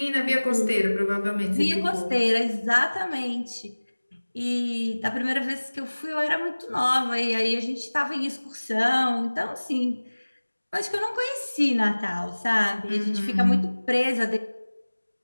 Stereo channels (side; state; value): both; inverted; correlation -1.00